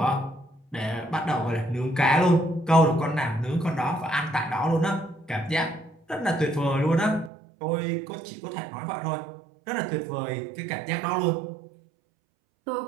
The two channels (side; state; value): left; drops out; at 7.3 s